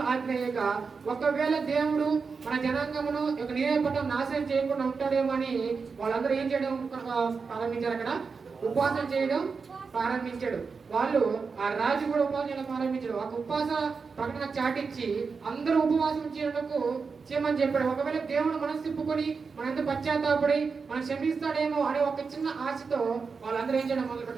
ఆజ్ఞేయగా ఒకవేళ దేవుడు మన జనాంగమును నినెవె పట్టణం నాశనం చేయకుండా ఉంటాడేమో అని వాళ్ళందరూ ఏం చేయడం ప్రారంభించారు, అక్కడ ఉపవాసం చేయడం ప్రారంభించాడు. వాళ్ళు ఆ రాజు కూడా ఉపవాసం చేయడం ప్రారంభించాడు. ఒక ఉపవాస ప్రకటన చాటించి అందరూ ఉపవాసం చేయమని చెప్పాడు. ఒకవేళ దేవుడు మనసు తిప్పుకొని మన ఎంత పశ్చాత్తాపడి మనం క్షమిస్తాడేమో అనే ఒక చిన్న ఆశతో వాళ్ళందరూ ఏం చేయడం మొదలు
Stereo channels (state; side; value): quieter; left; 5.1 dB